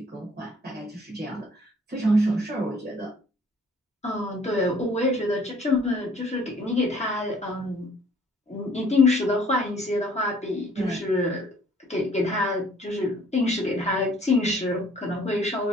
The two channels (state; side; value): normal; both; correlation 0.57